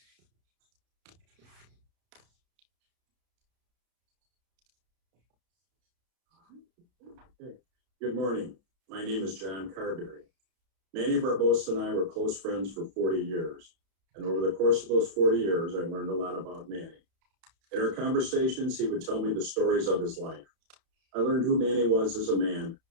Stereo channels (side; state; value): left; late; 32 ms